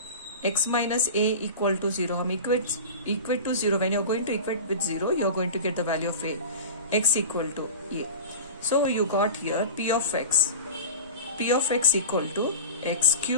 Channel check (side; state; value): both; inverted; correlation -0.31